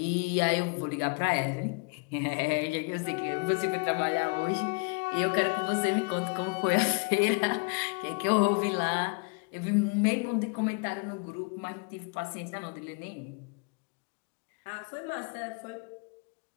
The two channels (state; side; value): quieter; right; 32.9 dB